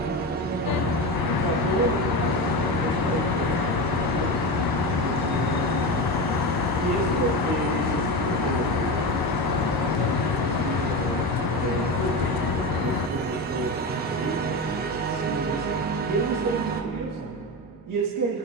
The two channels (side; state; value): both; normal; correlation 0.21